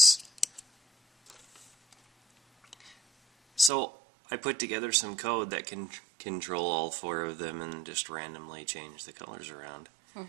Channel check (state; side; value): drops out; left; at 3.7 s